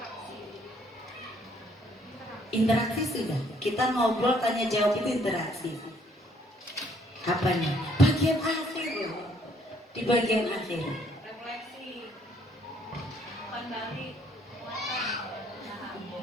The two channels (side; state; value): both; normal; correlation 0.65